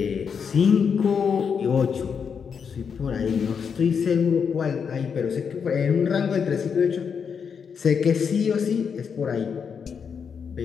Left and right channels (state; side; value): quieter; right; 6.6 dB